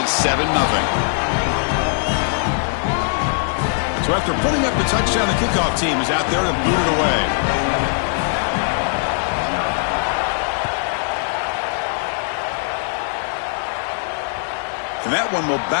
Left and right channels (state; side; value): silent; right; 66 dB below the other